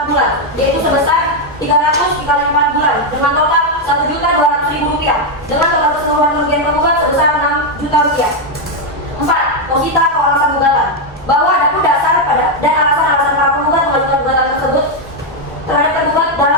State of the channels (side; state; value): both; normal; correlation 0.03